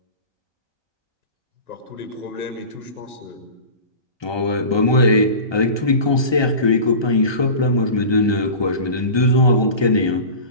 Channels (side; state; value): right; late; 1.2 ms